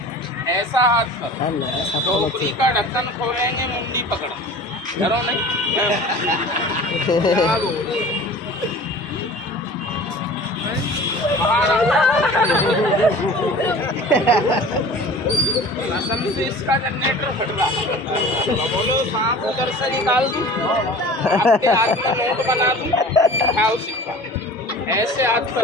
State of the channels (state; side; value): normal; both; correlation 0.42